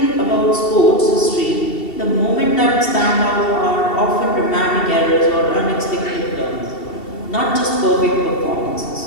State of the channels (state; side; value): late; right; 2.7 ms